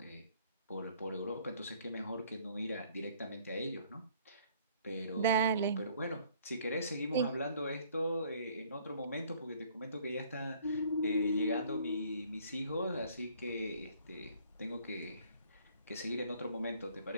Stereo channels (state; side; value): inverted; both; correlation -0.59